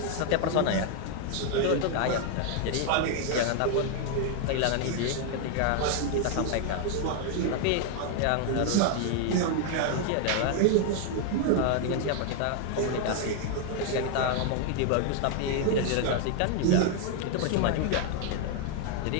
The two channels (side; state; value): both; different; correlation 0.00